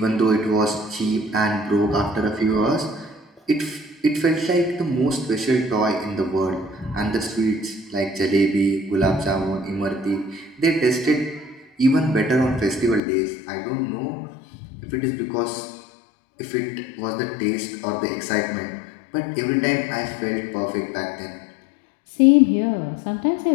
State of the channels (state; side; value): drops out; right; at 13.0 s